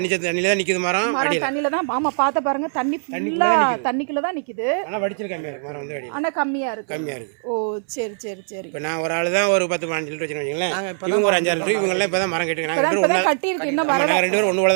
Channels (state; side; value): silent; left; 64 dB below the other